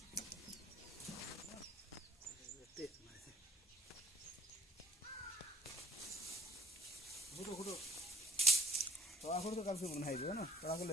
কালকে মনে হয় না তোরা করলে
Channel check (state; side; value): normal; both; correlation 0.54